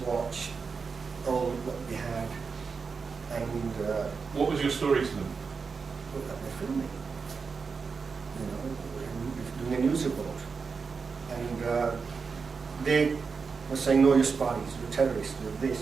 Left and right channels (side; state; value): left; quieter; 5.2 dB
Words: watch all what we had. And what was your story to them? look at they're filming, doing a news report. And they were saying, no, you're spies, you're terrorists, you're this,